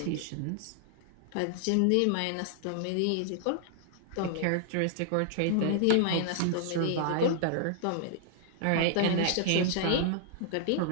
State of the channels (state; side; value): different; both; correlation -0.01